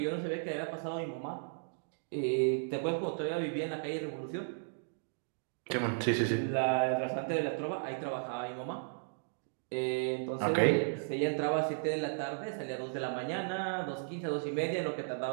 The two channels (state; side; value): silent; left; digital silence